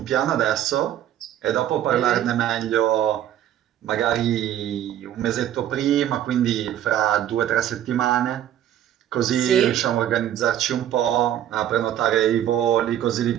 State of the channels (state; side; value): quieter; left; 11.3 dB